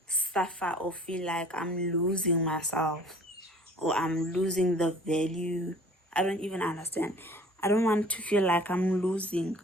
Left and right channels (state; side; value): normal; both; correlation 0.49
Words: suffer or feel like I'm losing myself or I'm losing the value. I don't even understand. I don't want to feel like I'm losing